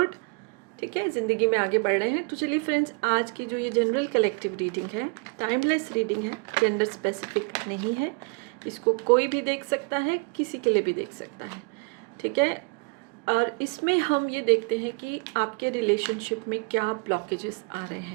ठीक है, ज़िंदगी में आगे बढ़ रहे हैं। तो चलिए फ्रेंड्स, आज की जो ये जनरल कलेक्टिव रीडिंग है, टाइमलेस रीडिंग है, जेंडर स्पेसिफिक नहीं है। इसको कोई भी देख सकता है, किसी के लिए भी देख सकता है। ठीक है, और इसमें हम ये देखते हैं कि आपके रिलेशनशिप में क्या ब्लॉकेजेस आ रहे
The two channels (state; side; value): quieter; left; 33.3 dB